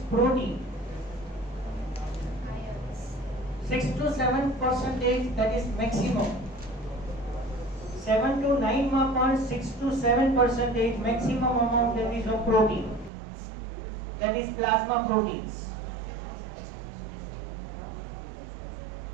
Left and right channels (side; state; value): left; drops out; at 13.1 s